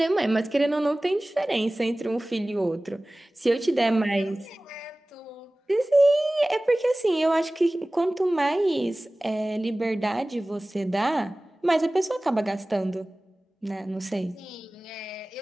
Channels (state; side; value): normal; both; correlation 0.98